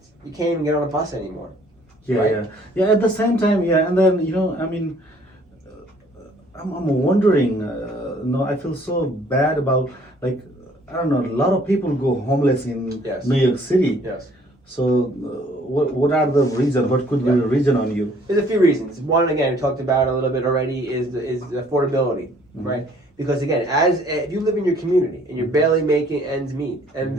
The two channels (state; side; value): normal; both; correlation 0.59